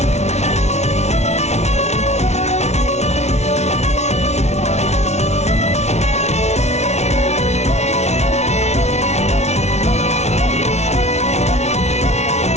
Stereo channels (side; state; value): right; late; 0.32 ms